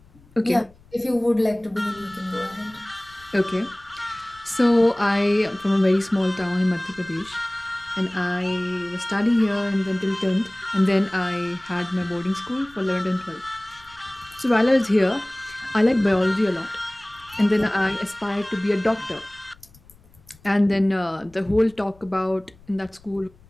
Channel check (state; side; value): noise; left; rumble, 27 dB below the sound